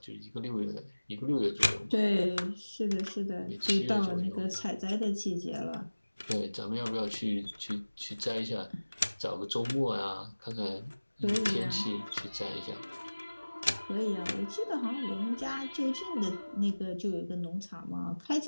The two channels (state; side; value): inverted; both; correlation -1.00